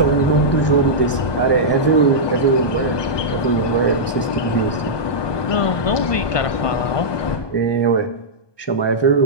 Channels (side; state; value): right; late; 1.2 ms